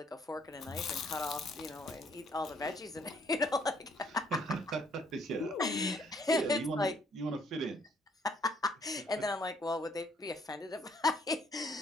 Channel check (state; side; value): normal; both; correlation 0.66